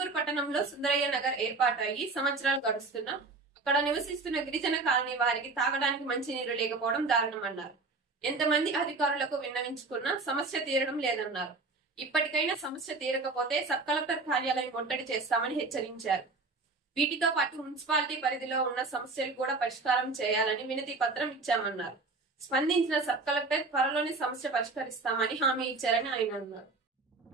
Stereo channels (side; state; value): left; quieter; 3.7 dB